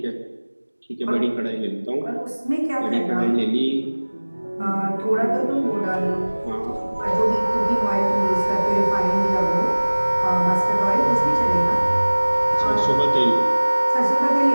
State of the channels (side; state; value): both; inverted; correlation -1.00